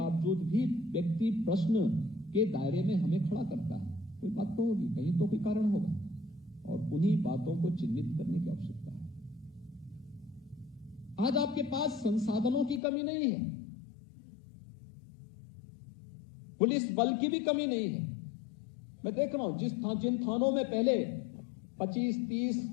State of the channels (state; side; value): drops out; right; at 12.8 s